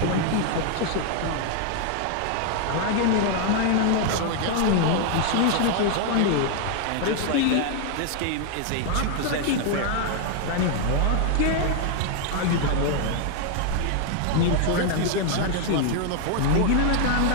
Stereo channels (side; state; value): both; different; correlation 0.00